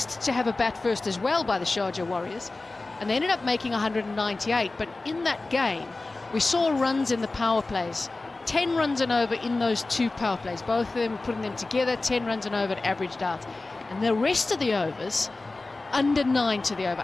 to have a bat first as well by the Sharjah Warriors, and they ended up making 198. But in that game, we saw runs in the power plays. 10 runs and over in those 2 power plays. Both of them putting them together, 10 runs and over, averaged out. And the rest of the overs, under 9 to the over,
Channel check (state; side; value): quieter; right; 3.3 dB